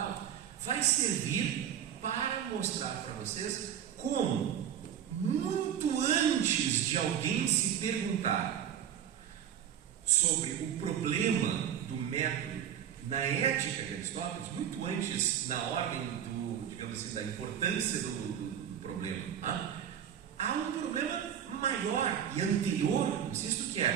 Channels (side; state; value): left; quieter; 9.4 dB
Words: vai servir para mostrar para vocês como, muito antes de alguém se perguntar sobre o problema do método na ética de Aristóteles, muito antes na ordem digamos assim, da importância do problema, há um problema maior e anterior, insisto, que